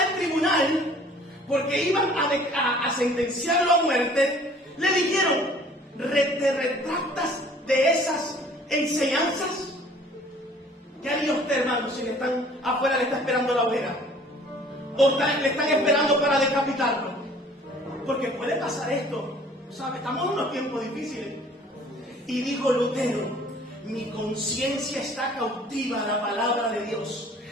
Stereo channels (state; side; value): normal; both; correlation 0.53